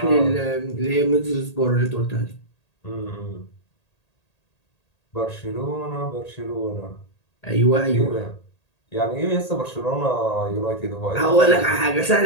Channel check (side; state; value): right; late; 1.8 ms